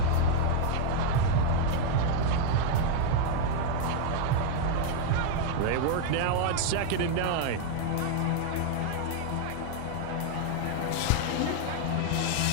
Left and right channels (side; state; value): both; different; correlation 0.00